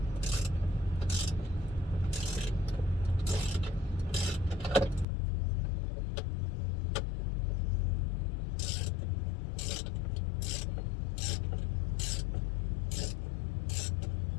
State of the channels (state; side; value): drops out; right; at 5.1 s